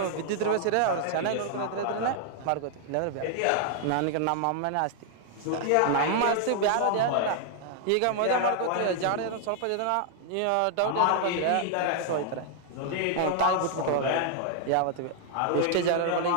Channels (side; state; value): both; different; correlation 0.00